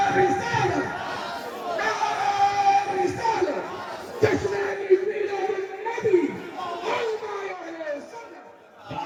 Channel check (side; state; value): both; identical; correlation 1.00